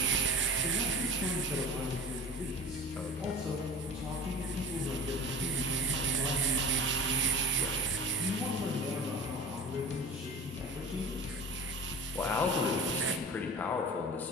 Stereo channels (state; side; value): normal; both; correlation 0.35